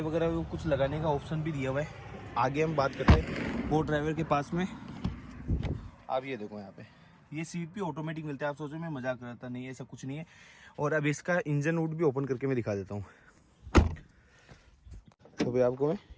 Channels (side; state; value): both; identical; correlation 1.00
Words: वगैरह कुछ लगाने का ऑप्शन भी दिया हुआ है। आगे हम बात करते हैं को ड्राइवर के पास में। आप ये देखो यहाँ पे ये सीट भी ऑटोमेटिक मिलता है। आप सोचो मैं मजाक कर रहा था, नहीं ऐसा कुछ नहीं है। और अब इसका इंजन रूट भी ओपन करके मैं दिखा देता हूँ। तो भाई आपको मैं